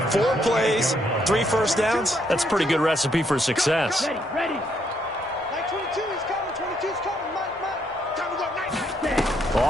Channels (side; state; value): both; normal; correlation 0.73